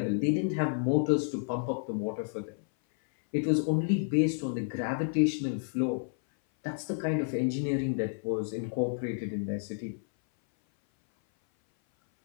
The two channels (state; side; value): silent; right; 56 dB below the other